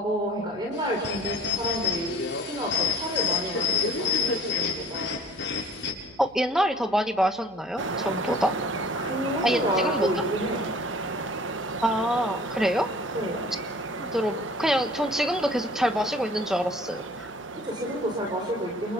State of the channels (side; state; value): right; noise; hum, 28 dB below the sound